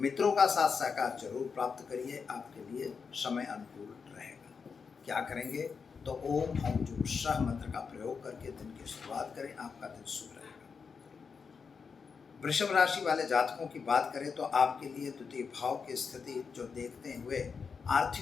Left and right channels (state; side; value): quieter; right; 5.6 dB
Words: का साथ सहकार जरूर प्राप्त करिए, आपके लिए समय अनुकूल रहेगा। क्या करेंगे तो ओम हम जो सह मंत्र का प्रयोग करके दिन की शुरुआत करें, आपका दिन शुभ रहेगा। वृषभ राशि वाले जातकों की बात करें तो आपके लिए द्वितीय भाव की स्थिति जो देखते हुए